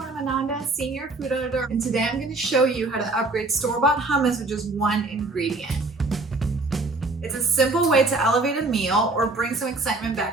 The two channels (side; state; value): left; quieter; 3.2 dB